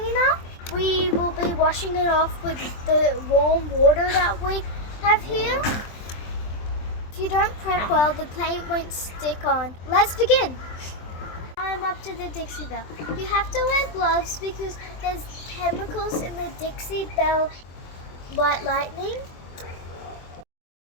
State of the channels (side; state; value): right; late; 24 ms